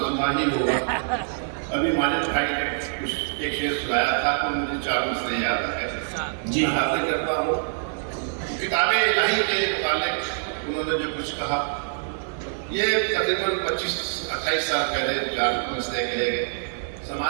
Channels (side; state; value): left; silent; 62 dB below the other